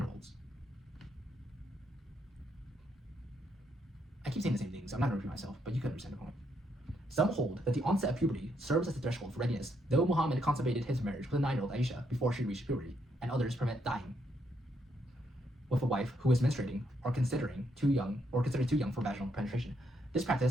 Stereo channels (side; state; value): both; normal; correlation 0.76